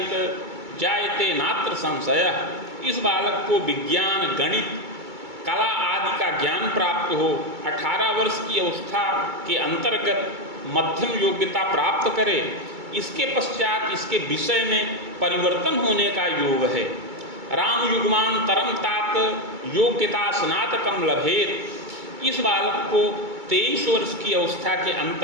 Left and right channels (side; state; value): left; late; 2.3 ms